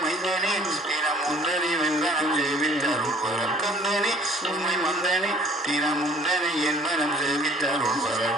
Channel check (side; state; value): both; normal; correlation 0.55